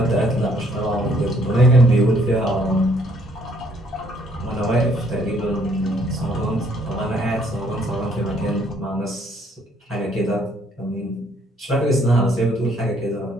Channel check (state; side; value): normal; both; correlation 0.65